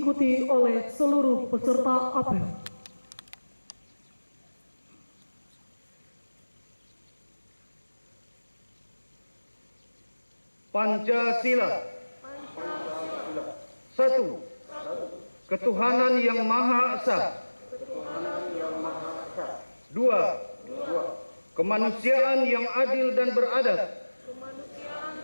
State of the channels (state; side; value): inverted; both; correlation -1.00